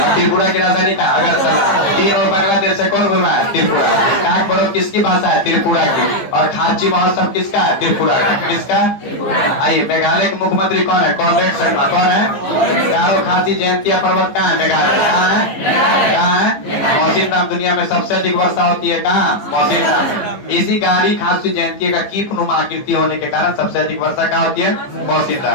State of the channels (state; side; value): late; right; 15 ms